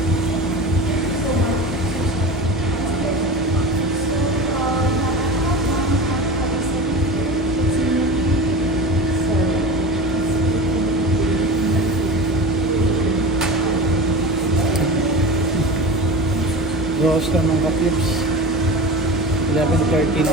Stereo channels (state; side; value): normal; both; correlation 0.31